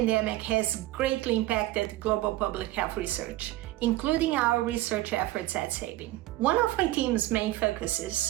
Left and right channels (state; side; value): quieter; left; 16.8 dB